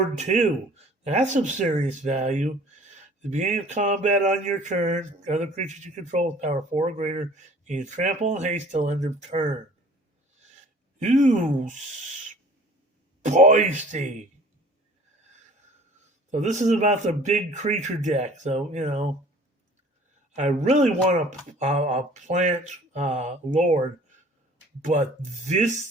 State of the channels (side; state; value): both; normal; correlation 0.50